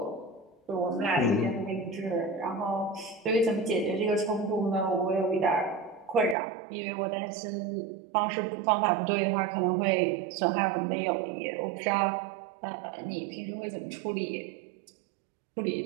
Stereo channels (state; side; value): drops out; left; at 6.4 s